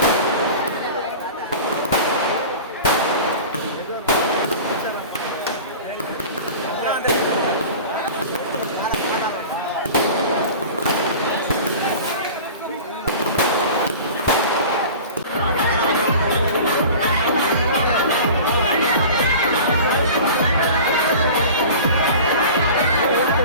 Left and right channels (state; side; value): inverted; both; correlation -0.38